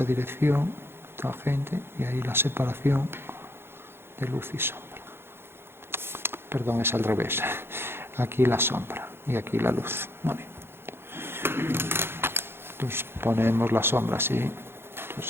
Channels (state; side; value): late; left; 0.11 ms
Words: dirección, tangente, y ahí la separación de luz y sombra. Perdón, es al revés. Aquí la sombra y aquí la luz. Vale. Entonces ponemos la sombra así.